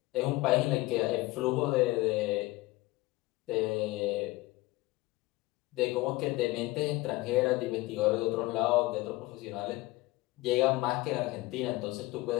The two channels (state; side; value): quieter; right; 20.1 dB